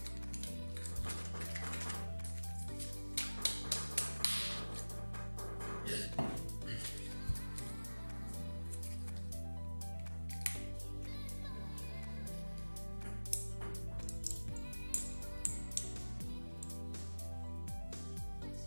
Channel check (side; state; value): both; inverted; correlation -1.00